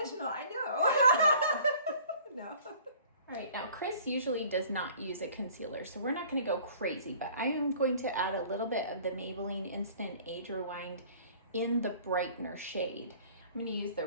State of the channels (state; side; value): inverted; both; correlation -0.51